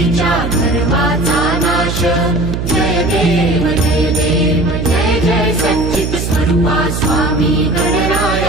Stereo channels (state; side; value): noise; right; hum, 3 dB below the sound